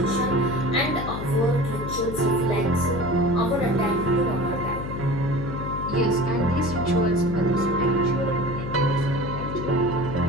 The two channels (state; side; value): noise; left; hum, 6 dB below the sound